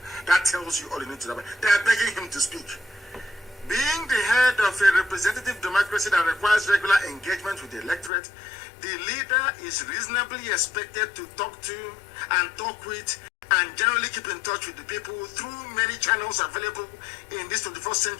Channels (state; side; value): drops out; right; at 8.1 s